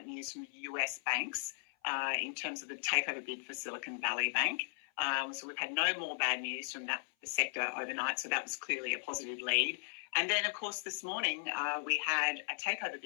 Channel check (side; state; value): right; silent; 53 dB below the other